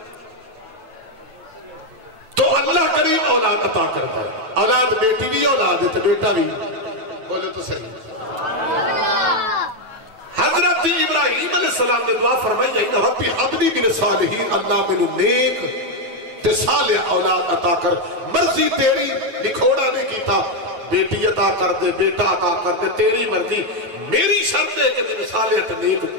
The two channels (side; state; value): left; late; 9.2 ms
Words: تو اللہ کریم اولاد عطا کرتا ہے اولاد بیٹی بھی اولاد ہے تو بیٹا بھی بولے تو صحیح حضرت ابراہیم علیہ السلام نے دعا فرمائی جائیں ربی حبلی من صالحین اللہ منو نیک تے صالح اولاد عطا کر مرضی تیری لکھوڑا نہیں کیتا بیٹی عطا کر دے بیٹا عطا کر دے تیری مرضی میری شرط ہے کہ من صالح تے نیک